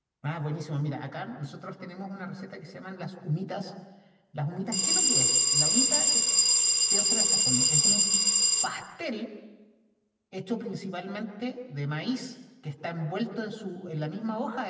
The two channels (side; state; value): both; identical; correlation 1.00